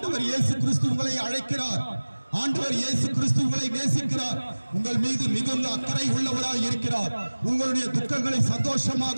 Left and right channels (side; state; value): both; inverted; correlation -1.00